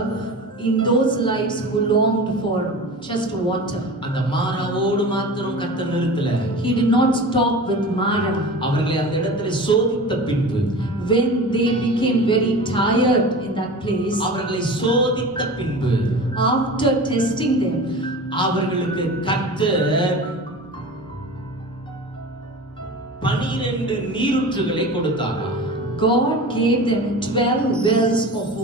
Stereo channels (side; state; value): both; normal; correlation 0.34